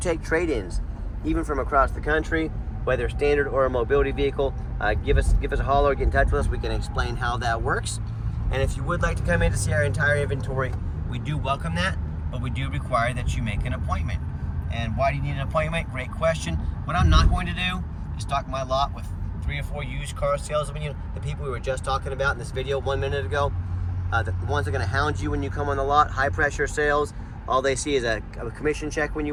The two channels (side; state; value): both; identical; correlation 1.00